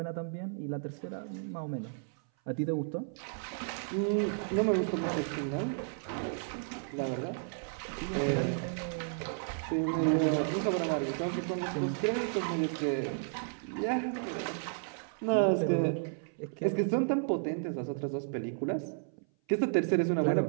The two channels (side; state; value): left; silent; 56 dB below the other